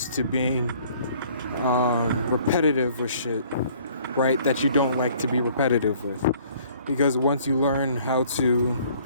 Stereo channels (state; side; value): inverted; both; correlation -0.57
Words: to being repetitive with shit, right? That you don't like to be repetitive with. Because once you learn how to